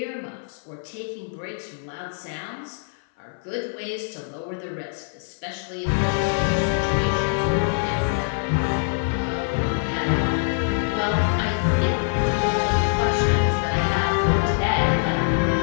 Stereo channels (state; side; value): silent; right; 59 dB below the other